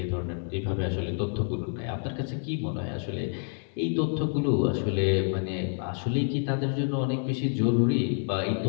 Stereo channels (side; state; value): right; silent; 59 dB below the other